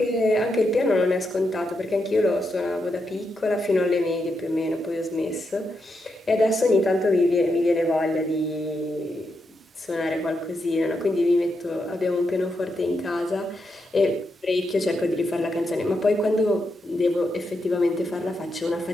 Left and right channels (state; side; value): normal; both; correlation 0.84